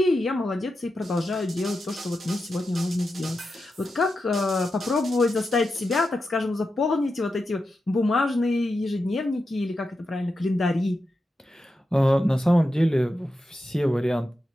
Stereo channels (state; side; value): normal; both; correlation 0.89